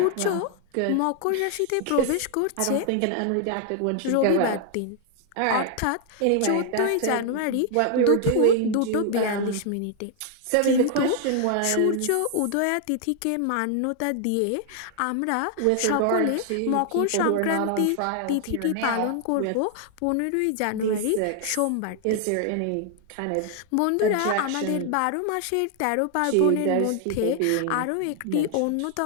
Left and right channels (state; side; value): different; both; correlation 0.00